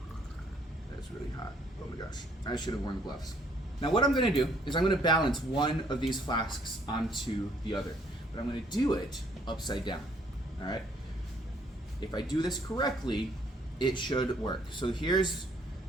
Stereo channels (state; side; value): normal; both; correlation 0.65